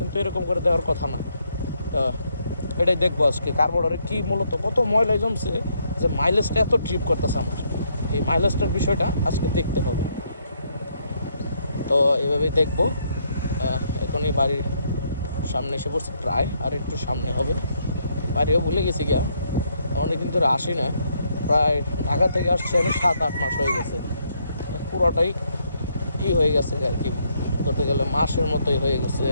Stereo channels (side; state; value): both; inverted; correlation -0.73